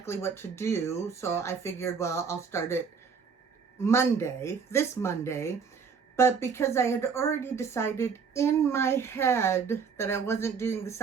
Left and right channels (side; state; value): left; quieter; 5.9 dB